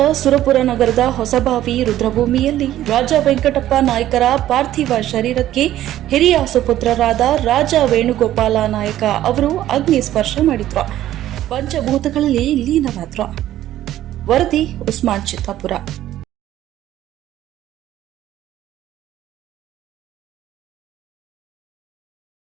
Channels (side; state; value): left; quieter; 13.2 dB